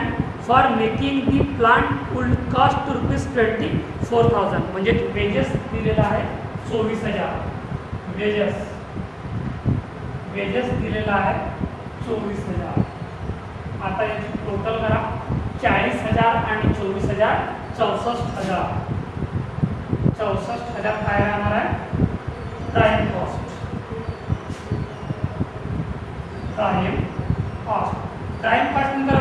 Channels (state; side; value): identical; both; correlation 1.00